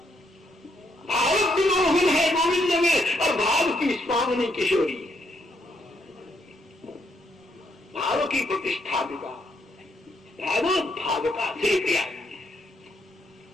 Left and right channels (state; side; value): normal; both; correlation 0.75